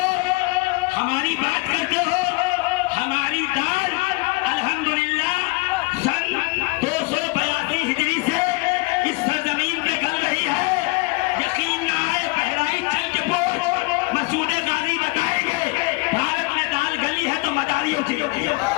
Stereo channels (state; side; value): quieter; right; 25.7 dB